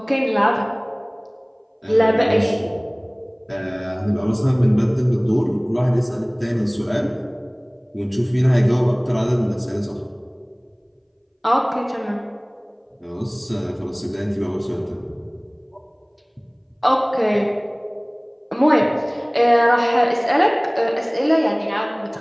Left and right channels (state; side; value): identical; both; correlation 1.00